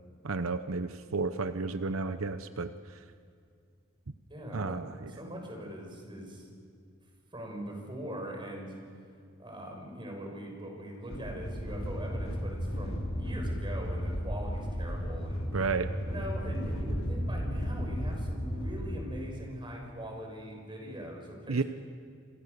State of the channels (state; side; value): normal; both; correlation 0.58